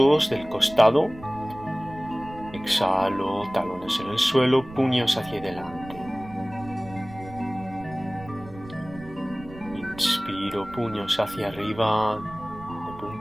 del costado. Exhalo, talones en el suelo, puños hacia adelante. Inspiro, puños hacia arriba, de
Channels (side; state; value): right; noise; rumble, 17 dB below the sound